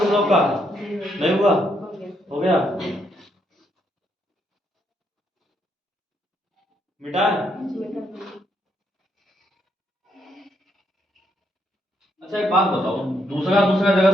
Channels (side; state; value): both; normal; correlation 0.76